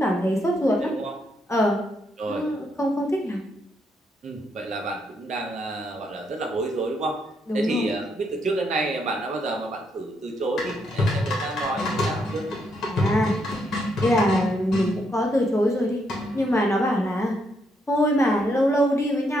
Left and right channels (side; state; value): both; normal; correlation 0.76